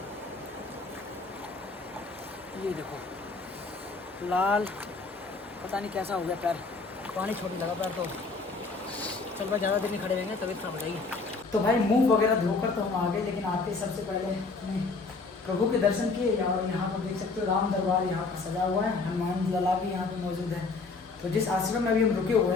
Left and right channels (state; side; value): quieter; right; 4.0 dB